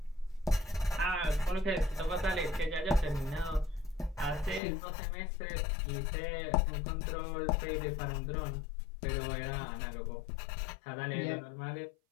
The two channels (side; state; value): right; drops out; at 4.6 s